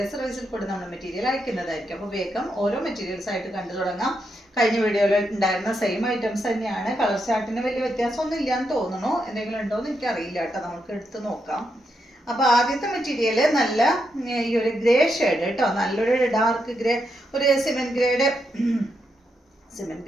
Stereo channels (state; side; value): normal; both; correlation 0.82